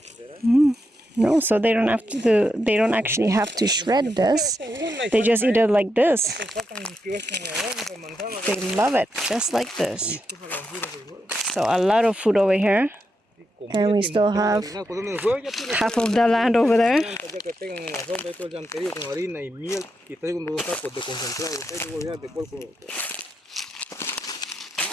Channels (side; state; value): both; normal; correlation 0.84